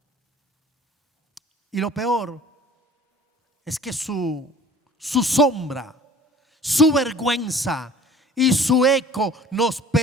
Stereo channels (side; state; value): both; normal; correlation 0.47